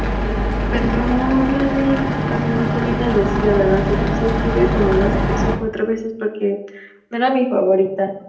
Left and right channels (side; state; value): both; identical; correlation 1.00